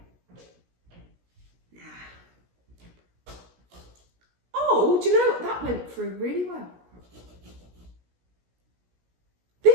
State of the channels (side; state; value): left; late; 17 ms